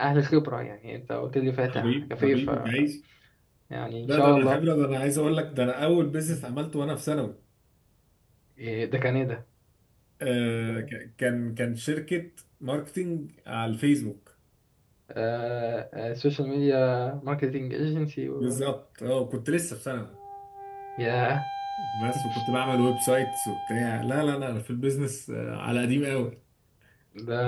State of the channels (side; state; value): both; identical; correlation 1.00